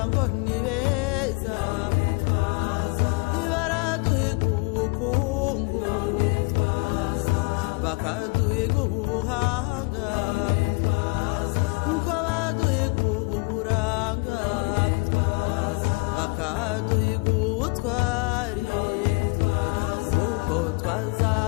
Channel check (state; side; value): quieter; right; 28.6 dB